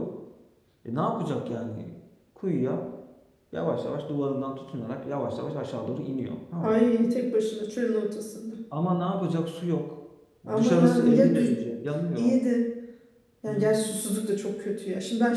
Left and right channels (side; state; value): both; identical; correlation 1.00